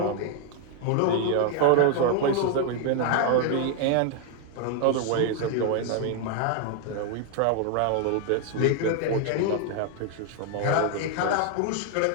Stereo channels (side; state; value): both; different; correlation 0.00